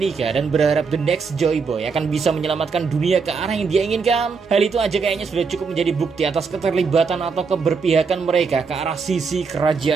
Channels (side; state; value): left; quieter; 5.2 dB